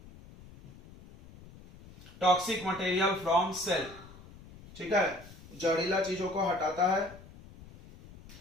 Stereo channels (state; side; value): noise; left; rumble, 20 dB below the sound